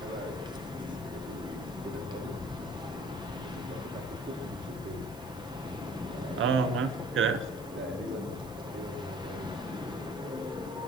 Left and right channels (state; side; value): noise; right; hiss, 20 dB below the sound